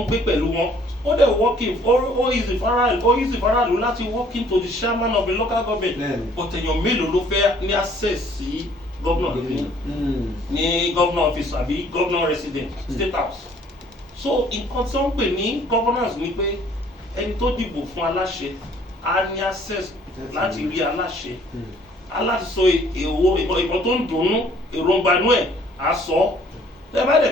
gbé pẹ̀lú wọn. ó dẹ̀ working ó easy faraàlú láti walk into the chairman of the local government but èèyàn mélòó ló fẹ́ ní access sí governor ní governor office àbí governor resident state house. so nǹkan tí wọ́n ń pè ní governance ni pé ẹni tó dìbò fún aláṣẹ á ní access láti rí aláṣẹ aláti sọ ìbọn tó ń dùnnú èròǹgbà inú ẹ̀ á sọ tẹ bá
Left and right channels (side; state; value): both; normal; correlation 0.59